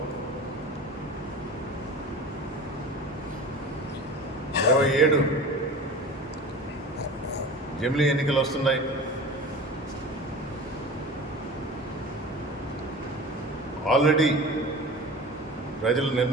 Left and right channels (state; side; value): normal; both; correlation 0.36